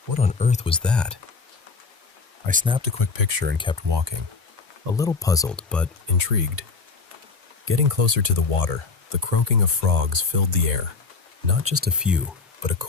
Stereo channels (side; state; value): right; quieter; 4.5 dB